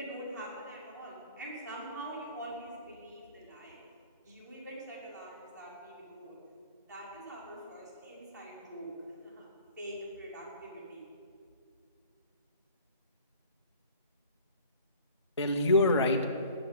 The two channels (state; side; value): inverted; both; correlation -0.49